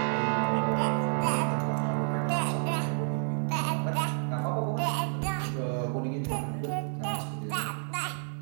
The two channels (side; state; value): left; silent; digital silence